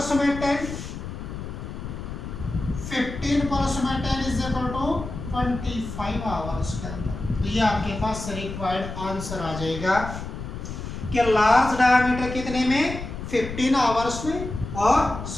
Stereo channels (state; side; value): noise; left; rumble, 8 dB below the sound